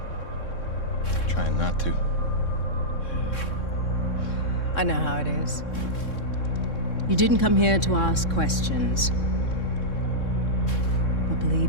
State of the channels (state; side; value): late; right; 3.6 ms